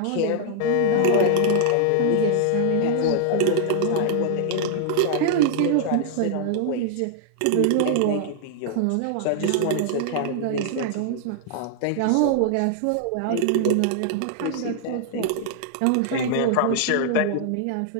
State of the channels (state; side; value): different; both; correlation -0.01